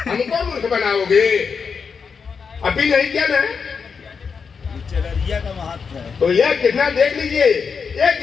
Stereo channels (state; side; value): quieter; right; 5.8 dB